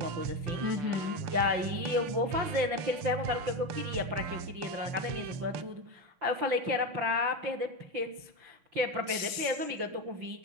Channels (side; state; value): left; late; 5.9 ms